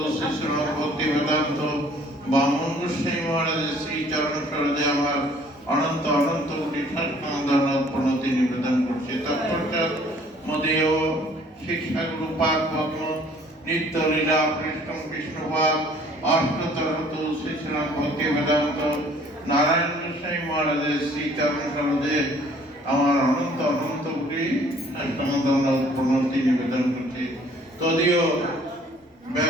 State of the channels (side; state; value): both; normal; correlation 0.56